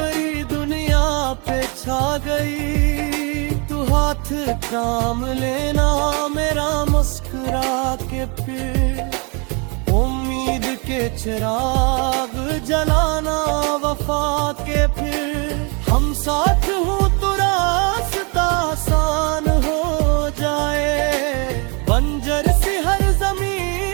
दुनिया पे छा गई, तू हाथ थाम लेना मेरा मुस्कुरा के, फिर उम्मीद के चिराग जलाना वफा के, फिर हम साथ हूँ तो रास्ता आसान हो जाए, बंजर सी हर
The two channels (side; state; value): left; quieter; 32.7 dB